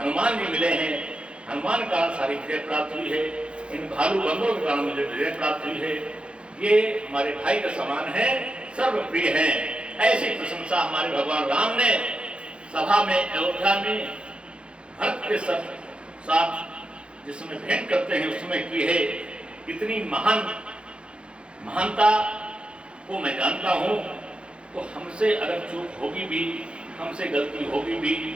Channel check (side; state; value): left; late; 0.057 ms